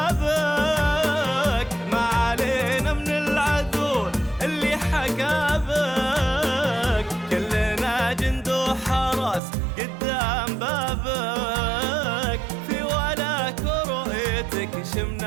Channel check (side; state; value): left; drops out; at 9.4 s